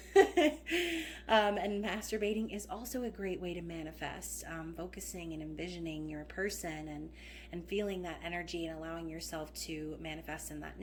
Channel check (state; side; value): identical; both; correlation 1.00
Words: And masturbating is also a great way to manifest, focusing and envisioning your person and feeling that energy and allowing yourself to manifest in that